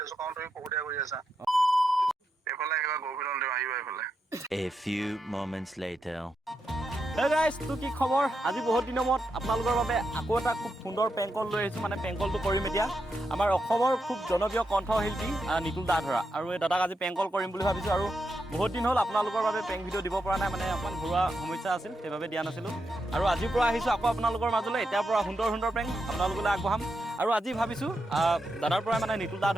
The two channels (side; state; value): both; normal; correlation 0.85